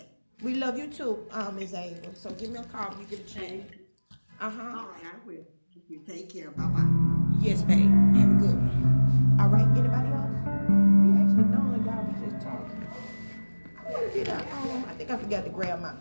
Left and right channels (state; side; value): inverted; both; correlation -1.00